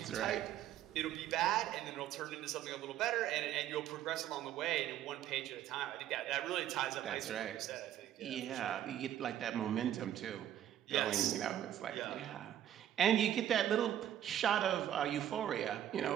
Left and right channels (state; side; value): quieter; left; 11.4 dB